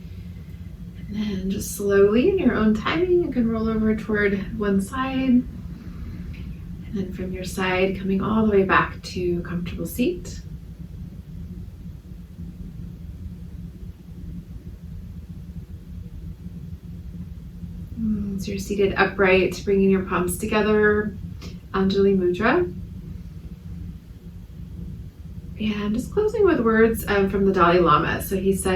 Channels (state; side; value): identical; both; correlation 1.00